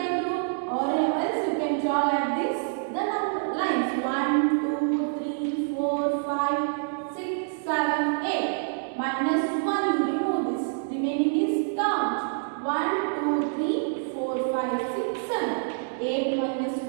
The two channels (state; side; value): silent; left; digital silence